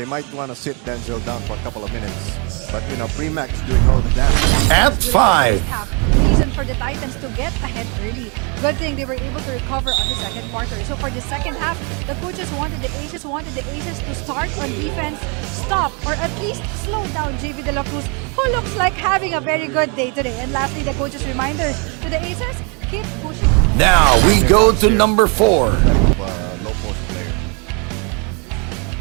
might want to sit Denzel down for a couple of minutes. But, Premac is doing all the damage. At 5. Reason for the Titans to get ahead early. Good thing they were able to recover on the second quarter. So for the second half, the coaches wanted the Aces to start on defense, stop, or at least slow down JV De La Cruz, who looks like having a very good day today. And lastly, the coaches' reminder to the Aces, keep pushing. Now we go to number 4. Low post player.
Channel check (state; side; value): quieter; left; 33.8 dB